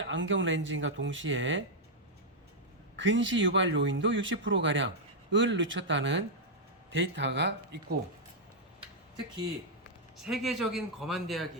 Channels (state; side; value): normal; both; correlation -0.04